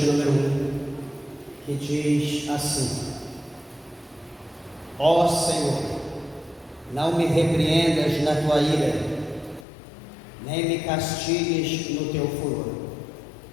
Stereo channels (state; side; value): drops out; right; at 9.7 s